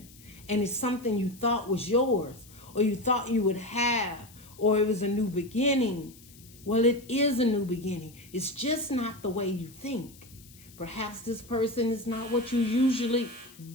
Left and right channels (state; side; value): noise; left; hiss, 23 dB below the sound